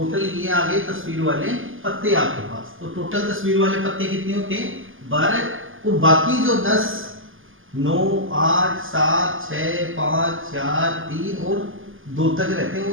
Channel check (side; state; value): left; late; 0.58 ms